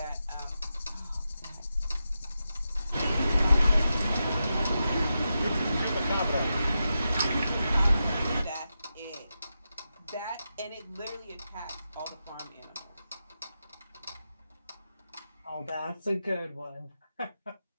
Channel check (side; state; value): both; inverted; correlation -0.89